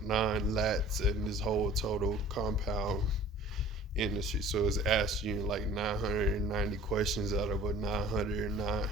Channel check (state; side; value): normal; both; correlation 0.48